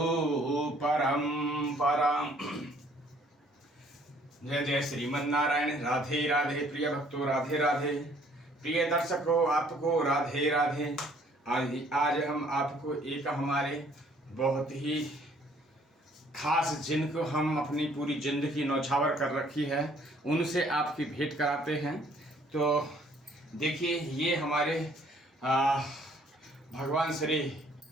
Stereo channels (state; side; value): normal; both; correlation 0.61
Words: परंपराम। जय जय श्रीमन्नारायण। राधे राधे प्रिय भक्तों, राधे राधे प्रिय दर्शकों, आपको राधे राधे। आज हम आपको एक हमारे बहुत ही खास, जिनको हम अपनी पूरी जिंदगी नौछावर कर रखी है, उनसे आपकी भेंट कराते हैं। तो देखिए, ये हमारे भगवान श्री